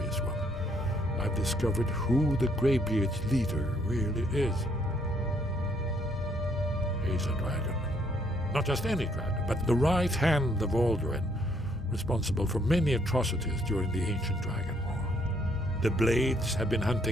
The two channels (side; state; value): both; normal; correlation 0.68